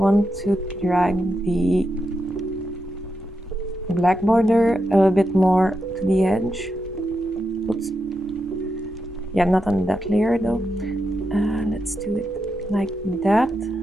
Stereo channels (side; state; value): both; normal; correlation 0.86